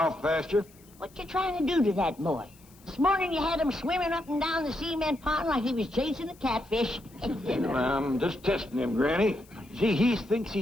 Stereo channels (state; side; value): noise; left; hiss, 27 dB below the sound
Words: pasture. What you trying to do to that boy? This morning you had him swimming up and down the cement pond like he was chasing a catfish. I'm just testing him, Granny. See, he thinks